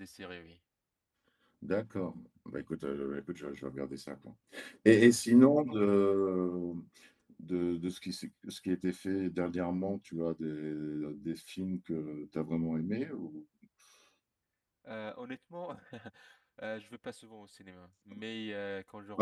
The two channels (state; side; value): identical; both; correlation 1.00